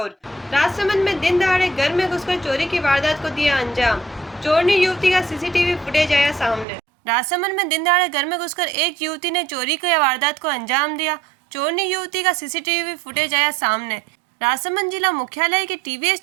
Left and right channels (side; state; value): left; drops out; at 6.7 s